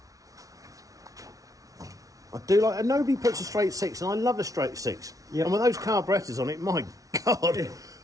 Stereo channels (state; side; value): late; left; 0.17 ms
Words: I do like, and nobody puts a straight 6, and I love a straight 6. Yep. And with those carburettors on it, my God. They